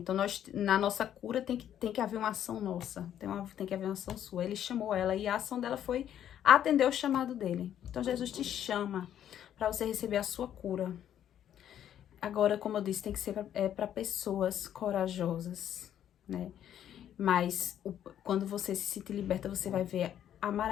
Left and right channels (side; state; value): right; quieter; 10.4 dB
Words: na nossa cura tem que haver uma ação nossa, tem que haver uma ação sua. Ele chamou ela e a ação dela foi atender o chamado dele. Então, Jesus te chama para você receber a sua cura. Agora, como eu disse, tem que ser para pessoas corajosas, né? Mas quando você se sentir liberta, você vai ver a